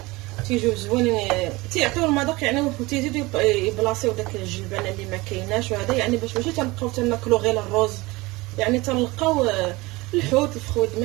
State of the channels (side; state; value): left; quieter; 22.2 dB